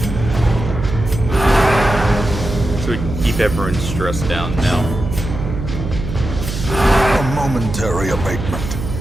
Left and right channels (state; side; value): noise; right; hum, 6 dB below the sound